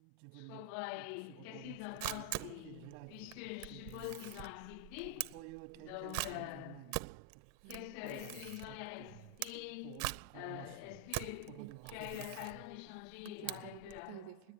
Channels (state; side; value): different; both; correlation 0.00